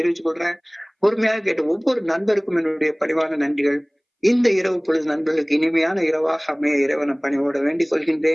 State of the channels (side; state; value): both; identical; correlation 1.00